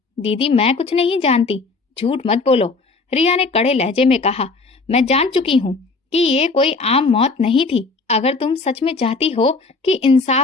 दीदी, मैं कुछ नहीं जानती। झूठ मत बोलो, रिया ने कड़े लहजे में कहा। मैं जान चुकी हूँ कि ये कोई आम मौत नहीं थी। अगर तुम सच में चाहती हो कि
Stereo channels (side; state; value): right; quieter; 3.9 dB